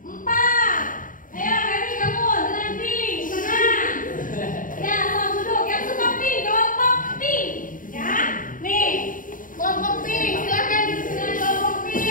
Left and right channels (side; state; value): right; late; 0.39 ms